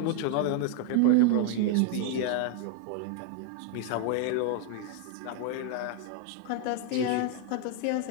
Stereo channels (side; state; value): both; different; correlation 0.00